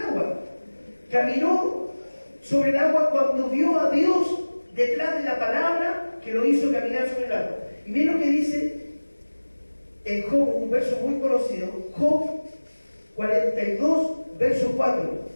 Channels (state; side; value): inverted; both; correlation -1.00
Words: Caminó sobre el agua cuando vio a Dios detrás de la palabra que lo hizo caminar sobre el agua. Y miren lo que dice en Job, un verso muy conocido, Job 42, verso 4.